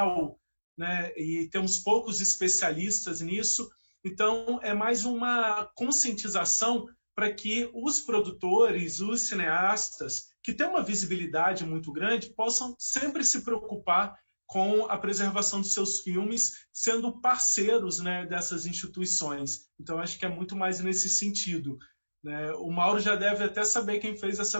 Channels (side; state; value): both; inverted; correlation -1.00